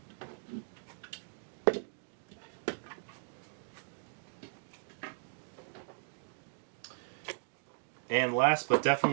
And last but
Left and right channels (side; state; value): left; silent; digital silence